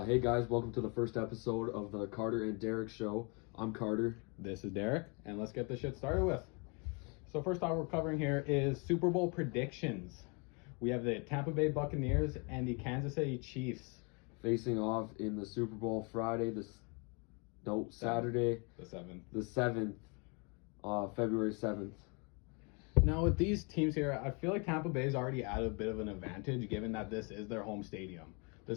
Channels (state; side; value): quieter; right; 33.0 dB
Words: guys, welcome to the first episode of the Carter and Derek show. I'm Carter. This is Derek, and let's get this shit started with. So first off, we're covering here is Super Bowl predictions. We have the Tampa Bay Buccaneers and the Kansas City Chiefs. Facing off in the Super Bowl Saturday, The 7th. the 7th, February 7th. Now with these teams here, I feel like Tampa Bay's already at a bit of an advantage given that this is their home stadium.